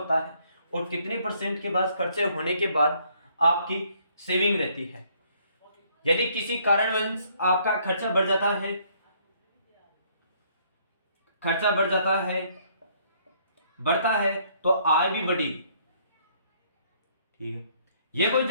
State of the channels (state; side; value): inverted; both; correlation -0.66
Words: है और कितने % के बाद खर्चे होने के बाद आपकी सेविंग रहती है। यदि किसी कारणवश आपका खर्चा बढ़ बढ़ता है तो आय भी बढ़ेगी। ठीक है, यह कोई